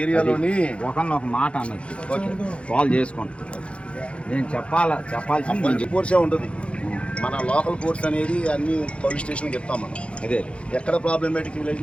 ఏరియాలోని ఒక మాట అన్నట్టు కాల్ చేసుకోండి. నేను చెప్పాల్సింది కోర్సే ఉంటుంది. మన లోకల్ కోర్స్ అనేది అన్ని పోలీస్ స్టేషన్కి చెప్తాం మనం. అదే ఎక్కడ ప్రాబ్లమేటిక్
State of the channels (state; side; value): late; right; 0.060 ms